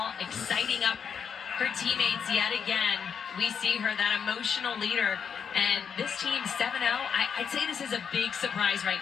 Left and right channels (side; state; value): right; quieter; 7.1 dB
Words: exciting up her teammates yet again. We see her, that emotional leader. And this team, 7-0, I'd say this is a big surprise right